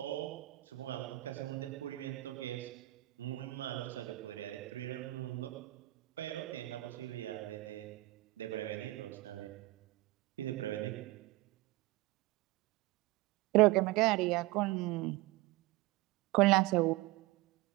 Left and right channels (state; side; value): quieter; left; 19.2 dB